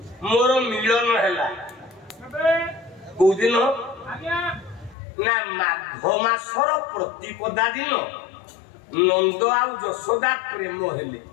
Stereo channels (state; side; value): drops out; right; at 5.0 s